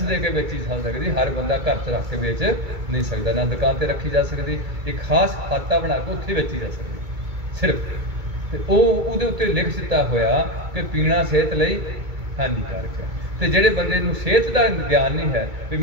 ਦੇ ਕੇ ਵੇਚੀ ਜਾ ਸਕਦੀ। ਹਰ ਬੰਦਾ ਘਰ 'ਚ ਰੱਖ ਕੇ ਵੇਚ ਨਹੀਂ ਸਕਦਾ, ਨਾ ਦੁਕਾਨ 'ਤੇ ਰੱਖੀ ਜਾ ਸਕਦੀ, ਇੱਕ ਖਾਸ ਖਾਤਾ ਬਣਾ ਕੇ ਉੱਥੇ ਵੇਚੀ ਜਾ ਸਕਦੀ ਸਿਰਫ। ਤੇ ਉਹਦੇ ਉੱਤੇ ਲਿਖ ਦਿੱਤਾ ਹੋਇਆ ਕਿ ਪੀਣਾ ਸਿਹਤ ਲਈ ਹਾਨੀਕਾਰਕ ਹੈ। ਤੇ ਜਿਹੜੇ ਬੰਦੇ ਨੂੰ ਸਿਹਤ ਦਾ ਗਿਆਨ ਨਹੀਂ ਹੈ ਵੀ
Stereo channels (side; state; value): left; late; 2.2 ms